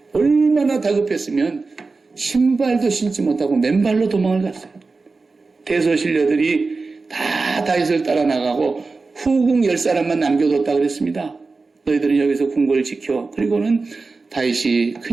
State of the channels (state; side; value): quieter; left; 4.0 dB